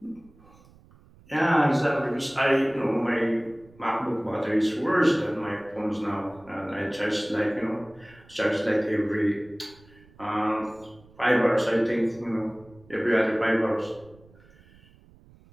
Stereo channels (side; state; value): right; noise; rumble, 26 dB below the sound